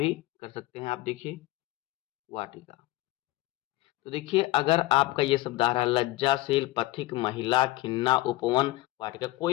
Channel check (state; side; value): quieter; right; 18.2 dB